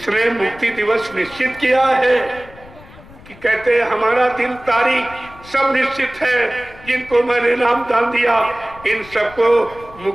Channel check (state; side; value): noise; left; rumble, 21 dB below the sound